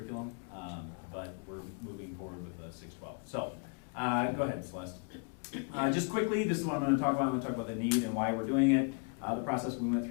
but we're moving forward with 612. So go ahead, Celeste. Just quickly, this is what I'm going to talk about. I'm going to talk about the need and why we're doing it. The process we went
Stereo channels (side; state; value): right; quieter; 35.8 dB